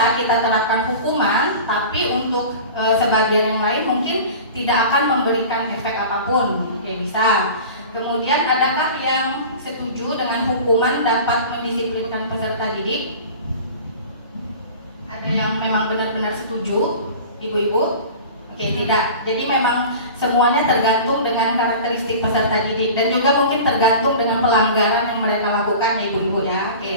kita terapkan hukuman, tapi untuk sebagian yang lain mungkin tidak akan memberikan efek apapun. Oke, bisa. Kemudian adakah yang setuju dengan hukuman dapat mendisiplinkan peserta didik? Ada yang memang benar-benar setuju, ibu-ibu? Oke, tidak. Jadi memang semuanya tergantung dengan karakteristik peserta didik dan juga mungkin tergantung dengan pelanggaran yang mereka lakukan, ibu-ibu ya.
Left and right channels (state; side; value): inverted; both; correlation -0.38